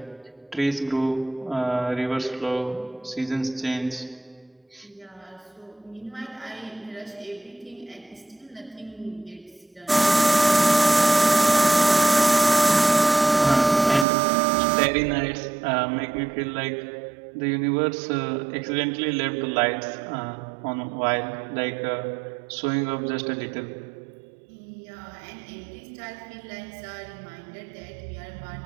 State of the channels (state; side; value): drops out; left; at 14.1 s